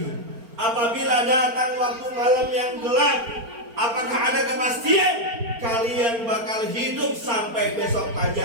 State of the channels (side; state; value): left; late; 4.4 ms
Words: apabila datang waktu malam yang gelap, apakah ada kepastian kalian bakal hidup sampai besok